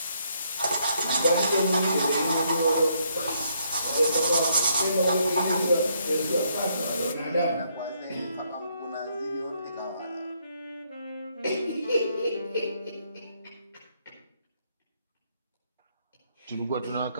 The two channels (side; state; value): both; inverted; correlation -0.72